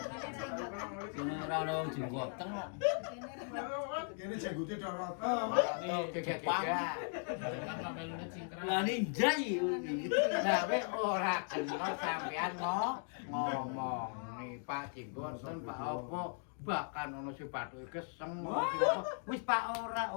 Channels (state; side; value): silent; right; 52 dB below the other